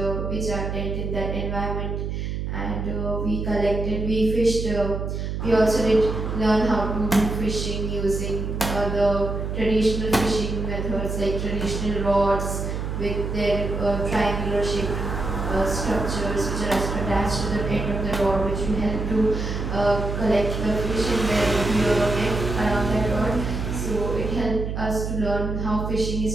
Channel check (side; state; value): right; noise; hum, 3 dB below the sound